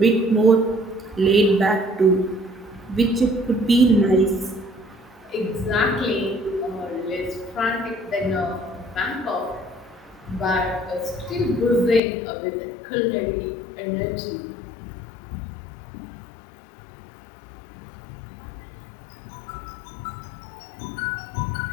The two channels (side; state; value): right; drops out; at 12.0 s